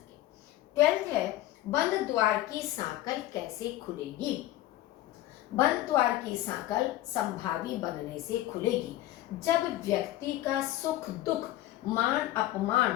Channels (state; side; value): quieter; right; 15.0 dB